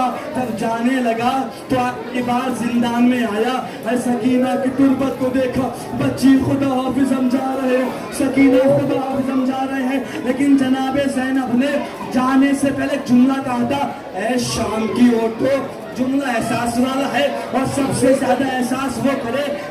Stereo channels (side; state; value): both; identical; correlation 1.00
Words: तब जाने लगा तो आखिरी बार जिंदान में आया। सकीना की तुरबत को देखा, बच्ची खुदा हाफिज समझा रहे हैं, सकीना खुदा हाफिज समझा रहे हैं, लेकिन जनाबे ज़ैनब ने जाने से पहले जुमला कहा था, ऐ शाम की औरतों। जुमला एहसास वाला है और सबसे ज्यादा एहसास वो करे